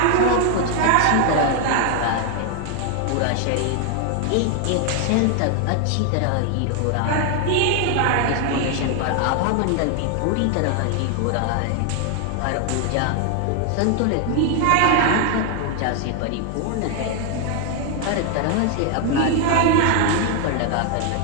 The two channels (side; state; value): both; different; correlation 0.00